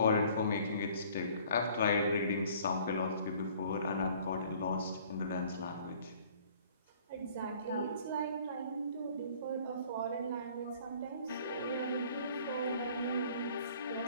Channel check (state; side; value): inverted; both; correlation -0.54